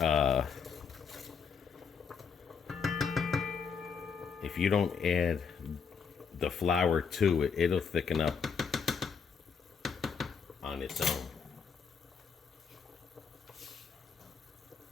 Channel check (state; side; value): quieter; right; 6.1 dB